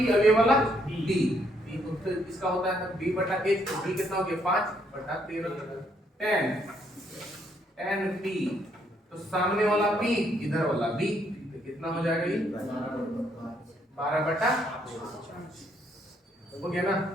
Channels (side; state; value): both; normal; correlation 0.71